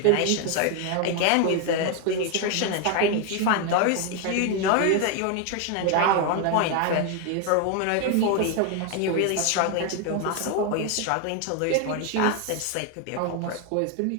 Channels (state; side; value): different; both; correlation 0.01